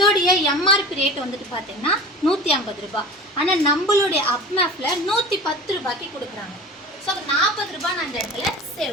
எம்ஆர்பி ரேட் வந்துட்டு பார்த்தீங்கன்னா 150 ரூபாய். ஆனால் நம்மளுடைய அப்மேப்பில் 110 ரூபாய்க்கு கொடுக்குறாங்க. ஸோ 40 ரூபாய் நான் இந்த இடத்துல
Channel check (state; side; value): normal; both; correlation 0.35